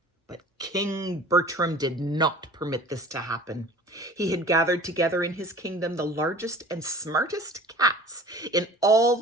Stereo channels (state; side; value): normal; both; correlation 0.44